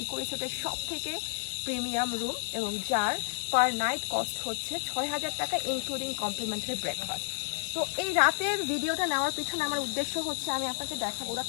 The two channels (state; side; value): silent; right; digital silence